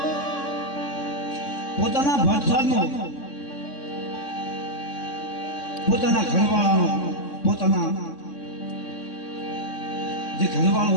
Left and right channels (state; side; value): late; right; 3.6 ms